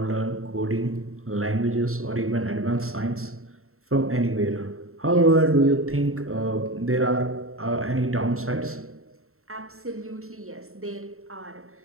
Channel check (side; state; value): left; late; 0.63 ms